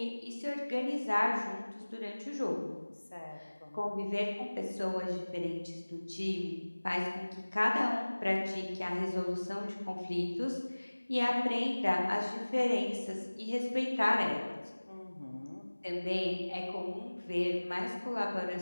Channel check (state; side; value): inverted; both; correlation -1.00